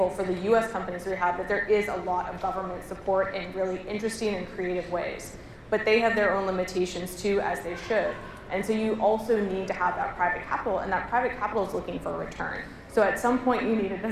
for the US companies we have, that there is a lot of government support in really interesting and creative ways. But they have their own limitations too, as they should. And so you also need to have that private capital, and that private capital is looking for a return. So at some point you need a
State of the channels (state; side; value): identical; both; correlation 1.00